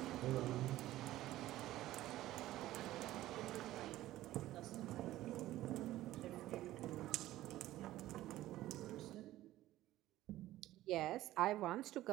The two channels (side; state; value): left; quieter; 15.2 dB